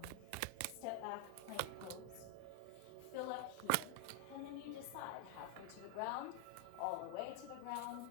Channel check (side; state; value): both; different; correlation 0.00